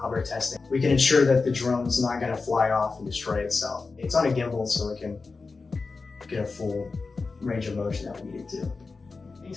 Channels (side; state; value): right; quieter; 4.2 dB